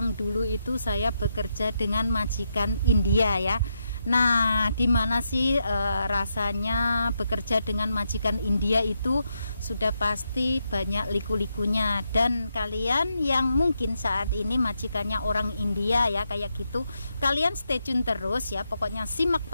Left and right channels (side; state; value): both; inverted; correlation -0.82